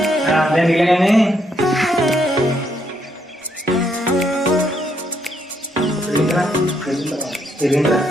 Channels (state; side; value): normal; both; correlation 0.74